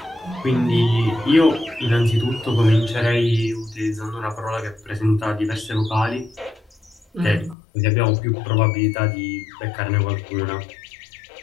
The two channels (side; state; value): right; drops out; at 7.6 s